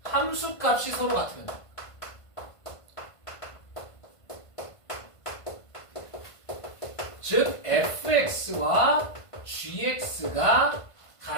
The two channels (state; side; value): late; right; 1.5 ms